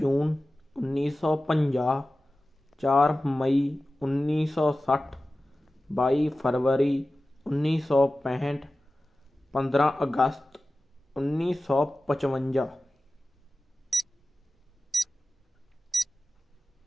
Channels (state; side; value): normal; both; correlation 0.95